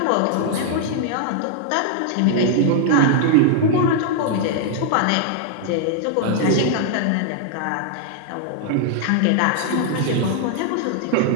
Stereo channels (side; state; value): both; different; correlation -0.01